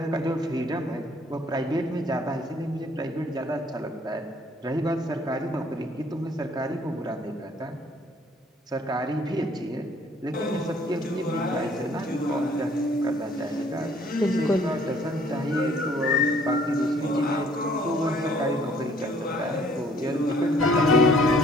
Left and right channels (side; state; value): both; normal; correlation 0.60